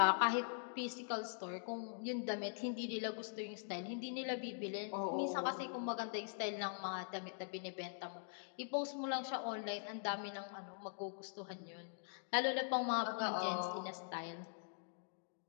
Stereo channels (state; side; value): silent; right; digital silence